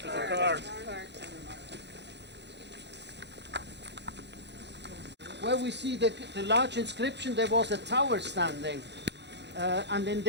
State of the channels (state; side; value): late; left; 0.50 ms